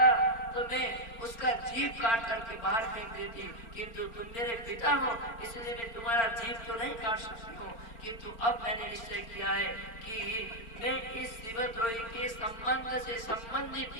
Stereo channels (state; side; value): late; right; 4.4 ms